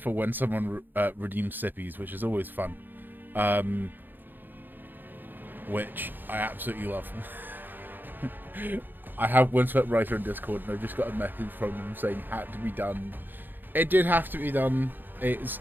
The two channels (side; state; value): left; late; 0.091 ms